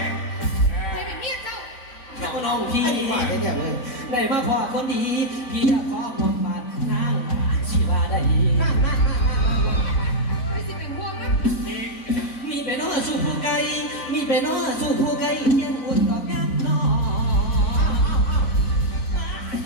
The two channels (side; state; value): right; late; 4.0 ms